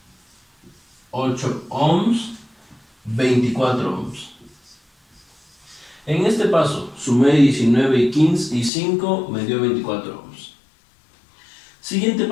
8 ohms. 24 ohms. En este paso sumé 19 y 15 y 5 me dio 24 ohms. Siguiente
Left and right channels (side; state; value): right; drops out; at 8.7 s